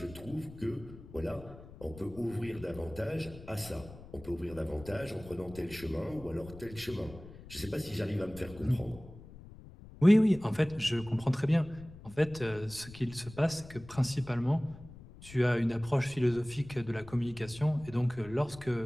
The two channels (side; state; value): left; noise; rumble, 17 dB below the sound